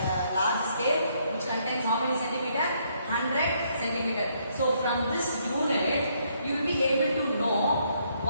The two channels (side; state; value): both; inverted; correlation -0.71